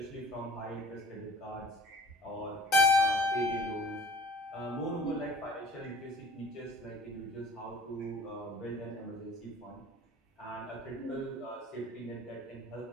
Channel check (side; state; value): both; normal; correlation 0.47